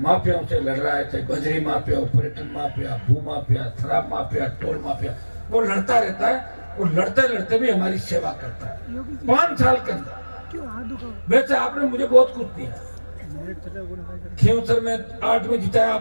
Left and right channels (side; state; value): both; inverted; correlation -1.00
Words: से लड़ रहा है, चाहे बजरी माफिया, पर्यटन माफिया, भू माफिया, शराब माफिया, टोल माफिया। वो लड़ता रहता है, वो लड़ते लड़ते भी हमारी सेवा करता है। 5 साल के अंदर वैसे आपने मुझे बहुत कुछ दिया। खींवसर में 8 में जिताया